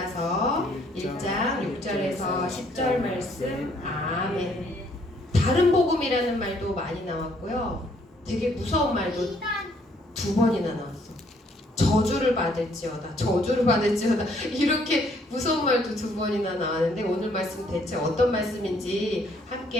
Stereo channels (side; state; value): both; normal; correlation 0.66